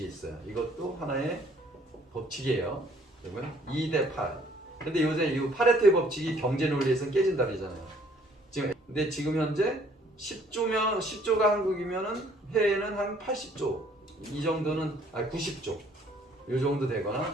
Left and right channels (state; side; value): normal; both; correlation 0.61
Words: 있어요. 이것도 하나의 법칙이에요. 그러면 2대 8. 근데 요새 이 파레토의 법칙이 경제 논리에서는 깨진다 그러잖아요. 근데 지금 현재 10조가 한국이면은 해외는 한 80조 이 정도는 90조 이 정도 되거나